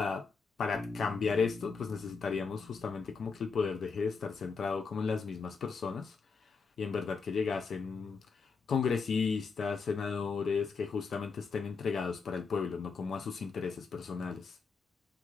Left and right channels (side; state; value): right; quieter; 5.0 dB